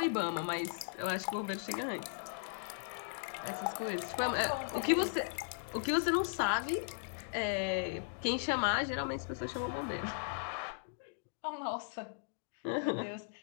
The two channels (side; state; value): right; silent; digital silence